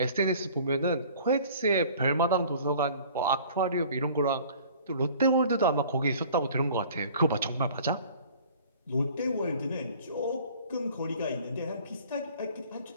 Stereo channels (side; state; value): both; inverted; correlation -0.49